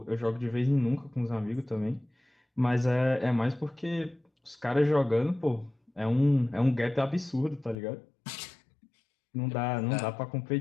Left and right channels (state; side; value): drops out; right; at 7.8 s